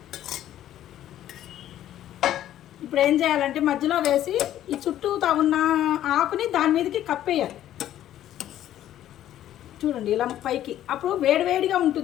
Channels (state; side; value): quieter; right; 12.1 dB